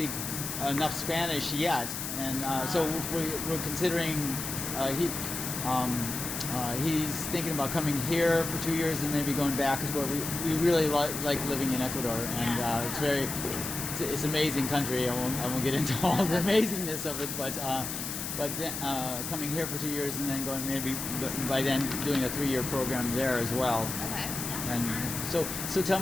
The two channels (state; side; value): noise; left; hiss, 5 dB below the sound